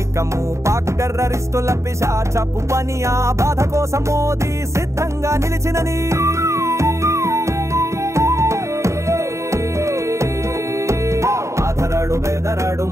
పాక్ టెర్రరిస్టుల పిశాచపు పని ఆ బాధ కోసం మోదీ సిద్ధంగా నిలిచినని ఆధరడు బెదరడు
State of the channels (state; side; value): late; left; 0.14 ms